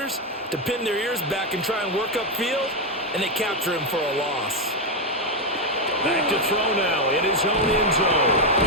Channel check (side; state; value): both; normal; correlation 0.05